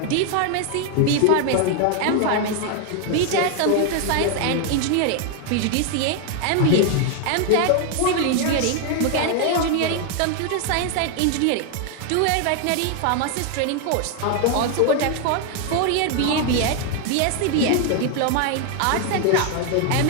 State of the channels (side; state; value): both; different; correlation 0.00